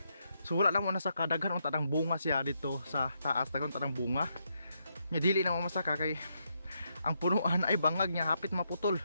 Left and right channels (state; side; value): inverted; both; correlation -0.79